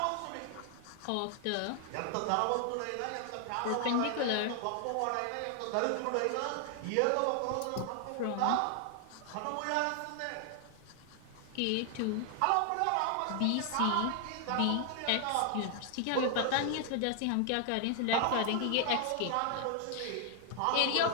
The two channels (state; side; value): different; both; correlation 0.00